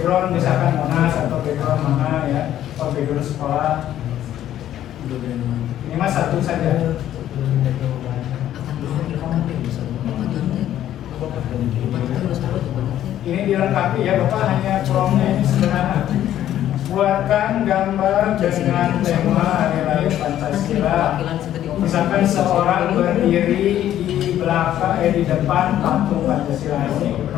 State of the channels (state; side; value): quieter; right; 11.9 dB